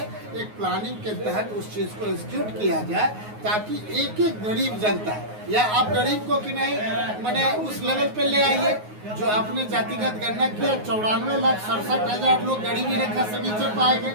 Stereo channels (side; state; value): left; late; 9.5 ms